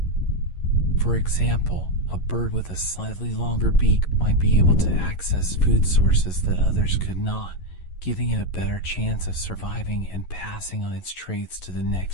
For example, a bird with a slightly longer beak might be able to access food sources that others could not, giving it a better chance of surviving and passing on its traits to the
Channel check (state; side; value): late; right; 11 ms